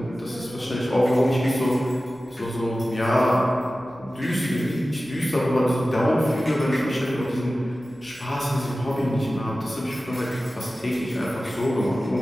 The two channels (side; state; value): both; normal; correlation 0.95